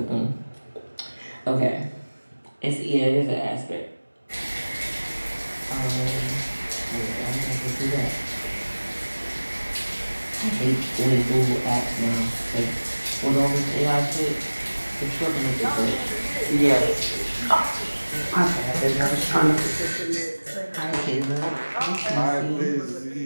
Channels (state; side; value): inverted; both; correlation -1.00